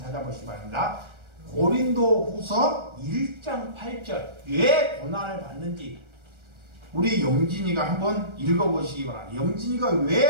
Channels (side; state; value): left; late; 1.3 ms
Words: 바랍니다. 고린도후서 1장 8절 왜 고난을 받는지 우리 영진이가 한번 읽어보시기 바랍니다. 영진이가